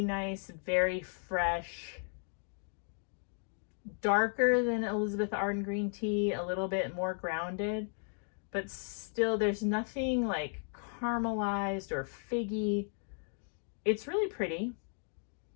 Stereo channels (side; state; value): right; silent; 54 dB below the other